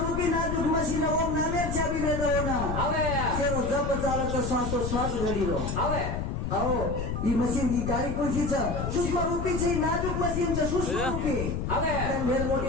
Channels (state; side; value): noise; left; rumble, 3 dB below the sound